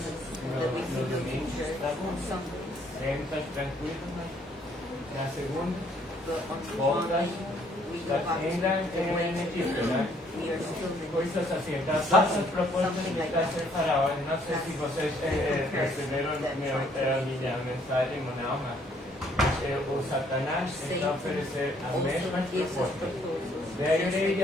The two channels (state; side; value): normal; both; correlation 0.65